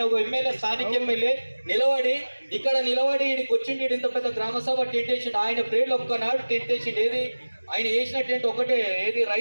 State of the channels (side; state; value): both; inverted; correlation -1.00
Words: ఒక ఎమ్మెల్యే, స్థానిక ఎమ్మెల్యే ఇక్కడ నిలబడి ఈడికి వచ్చిండు. ఇంత పెద్ద గ్రామ సభ టెంట్ వేసిండు. ఆయన ప్రేర్లు ఒక్కనాడు టెంట్ వేసిండు. ఏది ఆయన వేసిన టెంట్ ఒకటే, ఏది